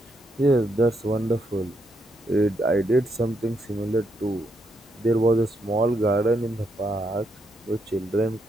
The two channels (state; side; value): normal; both; correlation 0.79